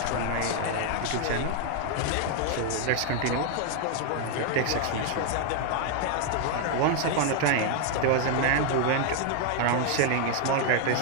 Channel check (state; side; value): different; both; correlation 0.00